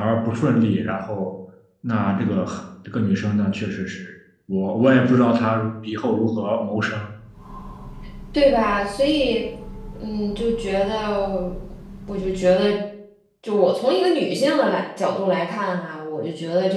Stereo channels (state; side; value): identical; both; correlation 1.00